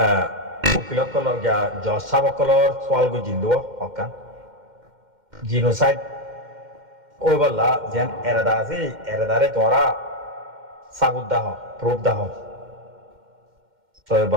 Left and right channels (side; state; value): left; late; 2.1 ms